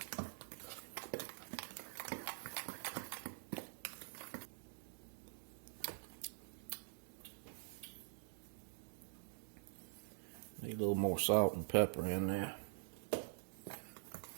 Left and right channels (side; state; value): left; silent; digital silence